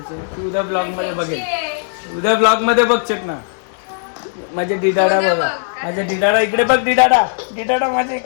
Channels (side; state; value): right; silent; digital silence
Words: तू उद्या ब्लॉग मध्ये बघेल, उद्या ब्लॉग मध्ये बघचेत ना. माझे डिडाडा बघा, माझ्या डिडाडा इकडे बघ. डिडाडा माझ्या